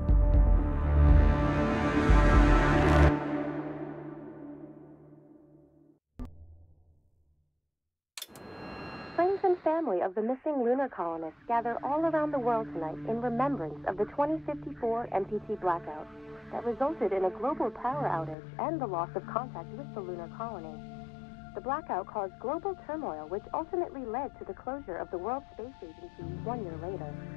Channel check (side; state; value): right; drops out; at 18.4 s